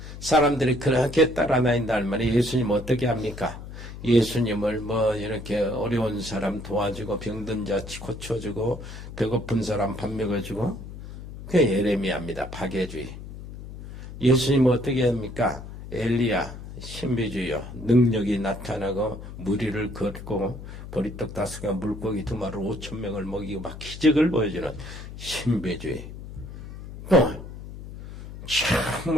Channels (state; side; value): noise; left; hum, 12 dB below the sound